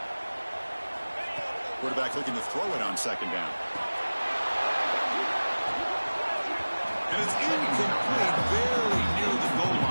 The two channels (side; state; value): both; inverted; correlation -1.00